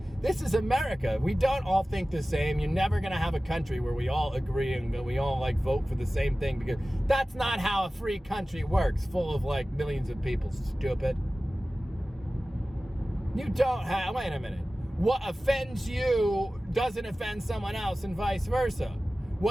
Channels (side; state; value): both; normal; correlation 0.96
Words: This is America. We don't all think the same. You're never going to have a country where we all agree and we all, like, vote for the same thing, because that's not how a free country works, full of, like, millions of people, stupid. You don't have, wait a minute. What offends you doesn't offend someone else and vice versa.